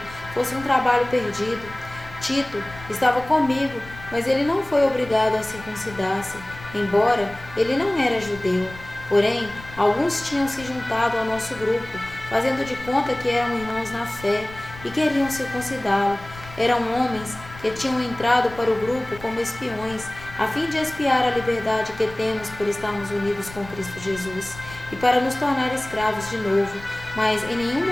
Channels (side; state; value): left; noise; rumble, 17 dB below the sound